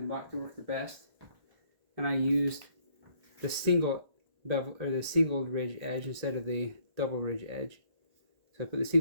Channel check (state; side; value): late; left; 1.8 ms